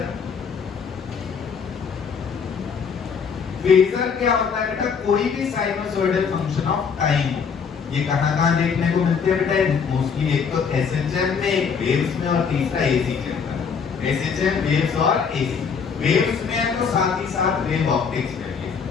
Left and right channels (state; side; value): quieter; right; 6.2 dB